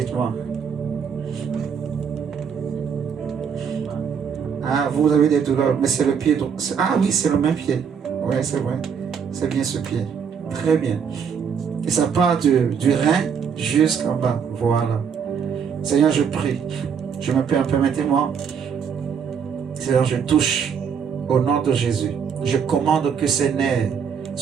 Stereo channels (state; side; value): quieter; left; 7.0 dB